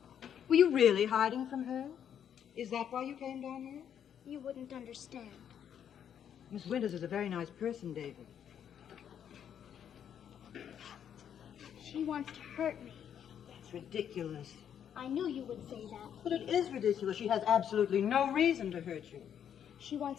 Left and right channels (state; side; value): quieter; right; 8.9 dB